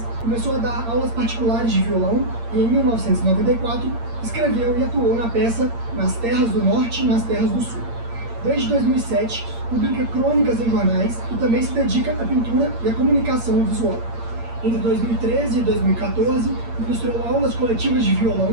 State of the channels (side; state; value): left; late; 8.7 ms